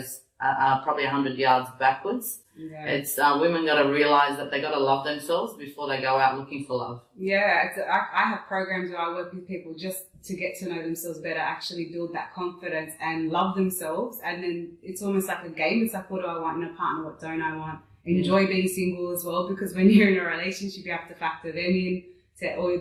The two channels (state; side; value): identical; both; correlation 1.00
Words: probably 100 yards backwards. Yeah. It's women got to realize that they got to love themselves before they go out looking for love. Yeah, I have programs where I work with people just to get to know themselves better, actually build that confidence and love themselves. And then it's almost like a game. It's like, what do I want in a partner? What don't I want? Enjoy being single as well, because when you're in a relationship, you have to factor them in to all your